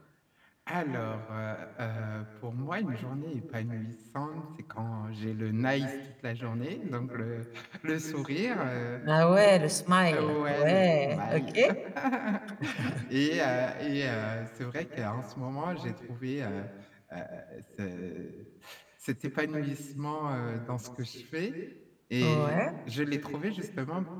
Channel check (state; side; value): identical; both; correlation 1.00